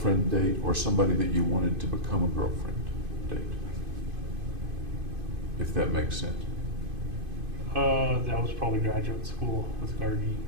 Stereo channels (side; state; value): left; late; 2.5 ms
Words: date, or somebody that you wanted to become a girlfriend date? If that makes sense. That was probably graduate school with Gargi.